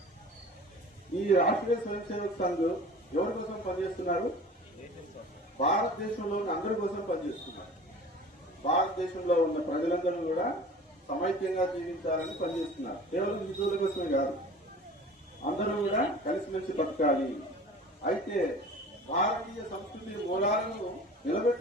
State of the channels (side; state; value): both; normal; correlation 0.42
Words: ఈ రాష్ట్రీయ స్వయం సేవక్ సంఘ్ ఎవరి కోసం పనిచేస్తున్నారు? భారతదేశంలో ఉన్న అందరి కోసం పనిచేస్తున్నారు. భారతదేశంలో ఉన్న ప్రజలందరూ కూడా సమైక్యంగా జీవించాలని పనిచేస్తున్నారు. కేవలం హిందువుల కోసమే కాదు, అందరూ కూడా కలిసిమెలిసి బతకాలి. అయితే భారతీయ సంస్కృతి మూలాలను